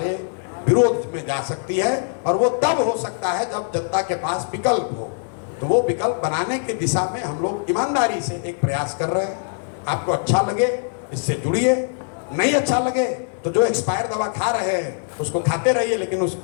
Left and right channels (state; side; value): silent; right; digital silence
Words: विरोध में जा सकती है, और वो तब हो सकता है जब जनता के पास विकल्प हो। तो वो विकल्प बनाने की दिशा में हम लोग ईमानदारी से एक प्रयास कर रहे हैं। आपको अच्छा लगे इससे जुड़िए, नहीं अच्छा लगे तो जो एक्सपायर दवा खा रहे हैं उसको खाते रहिए, लेकिन उस